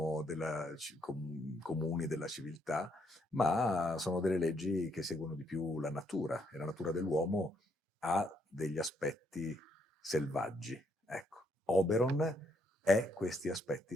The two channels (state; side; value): normal; both; correlation 0.73